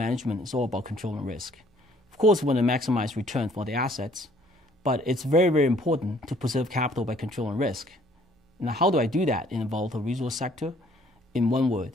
is all about controlling risk. Of course, we want to maximize return for the assets, but it's very, very important to preserve capital by controlling risk. Now, how do I do that in a volatile resource sector? In one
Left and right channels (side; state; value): both; normal; correlation 0.60